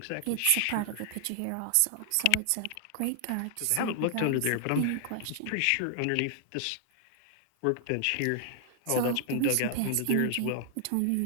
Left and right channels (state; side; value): different; both; correlation 0.00